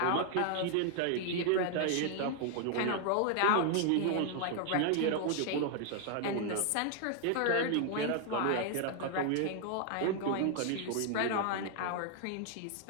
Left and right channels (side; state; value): both; different; correlation 0.00